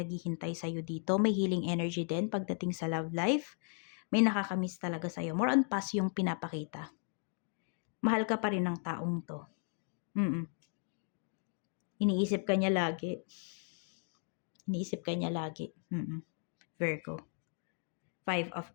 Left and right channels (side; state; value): right; silent; 54 dB below the other